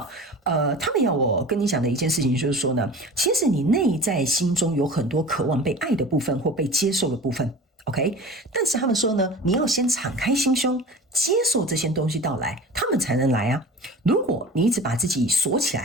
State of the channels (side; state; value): both; normal; correlation 0.37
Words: 们要我跟你讲的一件事情就是说呢，其实你内在心中有很多渴望被爱的部分或被接受的部分。OK， 但是他们说呢，你要先敞开心胸，接受这些东西到来，他们才能来啊。如果你一直把自己锁起